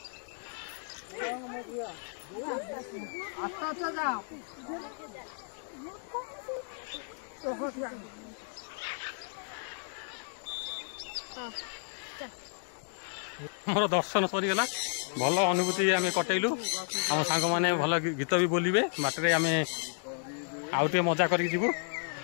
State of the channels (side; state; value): right; silent; digital silence